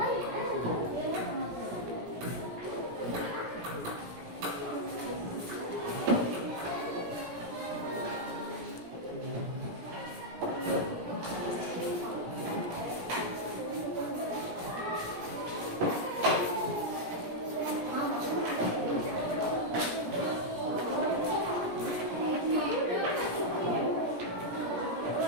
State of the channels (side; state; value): left; late; 17 ms